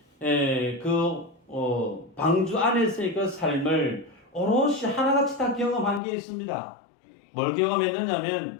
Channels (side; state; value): right; drops out; at 6.0 s